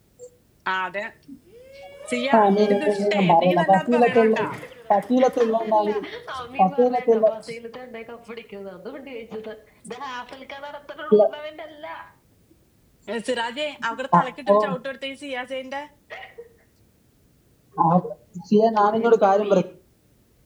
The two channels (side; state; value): both; identical; correlation 1.00